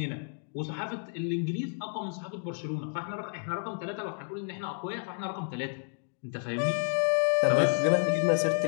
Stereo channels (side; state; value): right; silent; 55 dB below the other